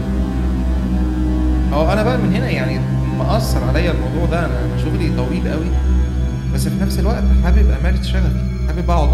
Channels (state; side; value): identical; both; correlation 1.00